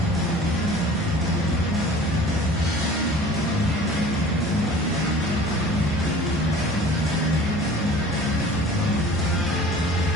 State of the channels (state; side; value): normal; both; correlation 0.45